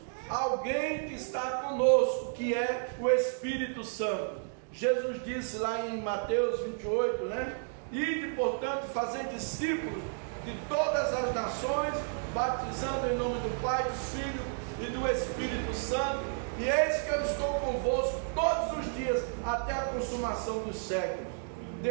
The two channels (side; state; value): left; silent; digital silence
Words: alguém que está conosco, que é o Espírito Santo. Jesus disse lá em Mateus 28, né? Ide, portanto, fazer discípulos de todas as nações, batizando em nome do Pai, do Filho e do Espírito Santo, e eis que eu estou convosco todos os dias, até a consumação dos séculos.